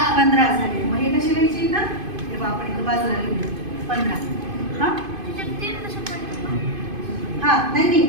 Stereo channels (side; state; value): left; late; 2.5 ms